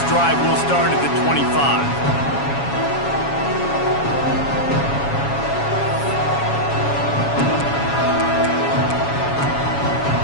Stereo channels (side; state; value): right; late; 7.2 ms